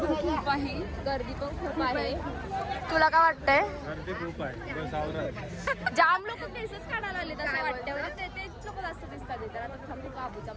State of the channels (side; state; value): both; identical; correlation 1.00